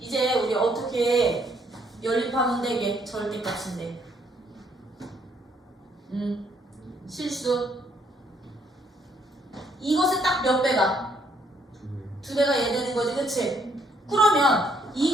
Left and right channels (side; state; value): both; normal; correlation 0.69